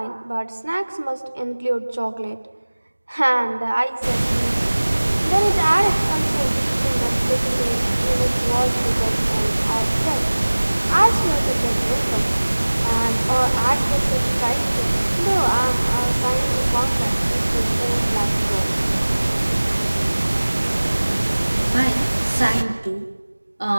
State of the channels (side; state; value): both; inverted; correlation -1.00